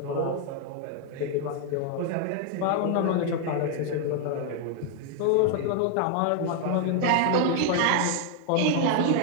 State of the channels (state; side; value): different; both; correlation 0.00